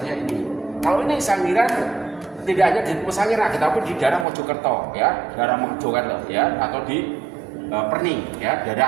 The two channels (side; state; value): left; drops out; at 4.2 s